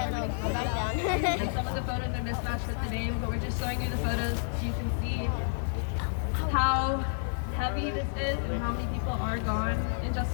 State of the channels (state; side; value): silent; right; digital silence